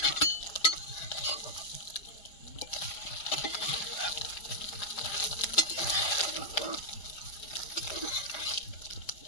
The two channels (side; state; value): right; late; 4.7 ms